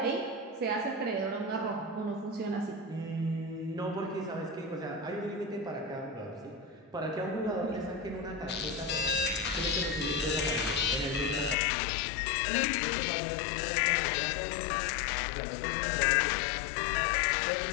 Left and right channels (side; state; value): right; drops out; at 11.6 s